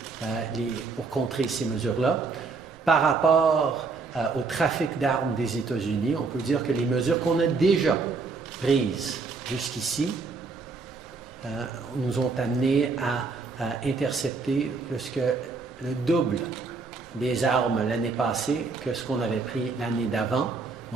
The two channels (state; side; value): quieter; left; 4.4 dB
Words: pour contrer ces mesures-là. Par rapport au trafic d'armes des États-Unis, on peut dire que les mesures qu'on a déjà prises jusqu'ici nous ont amenés à intercepter plus que le double des armes l'année passée que ce qu'on avait pris l'année d'avant.